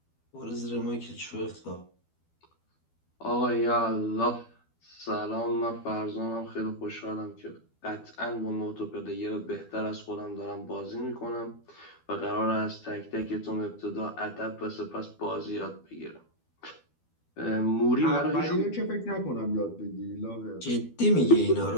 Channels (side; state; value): right; late; 12 ms